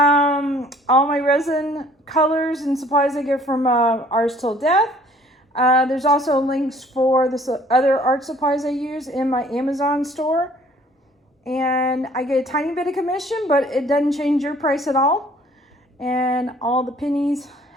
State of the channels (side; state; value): both; normal; correlation 0.56